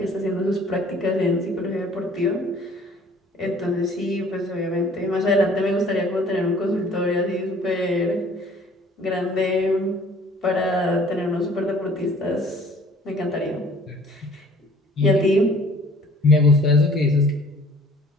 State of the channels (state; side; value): normal; both; correlation 0.53